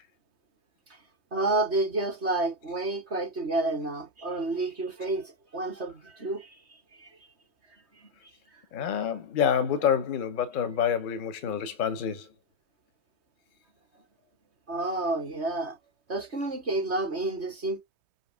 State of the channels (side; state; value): left; late; 3.2 ms